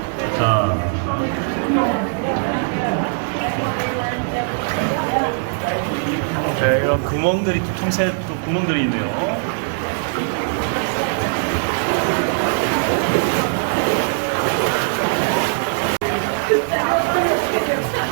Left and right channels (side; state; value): left; silent; 63 dB below the other